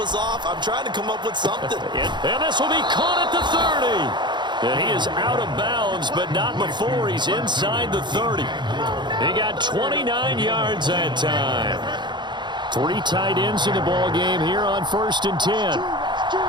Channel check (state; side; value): late; left; 0.22 ms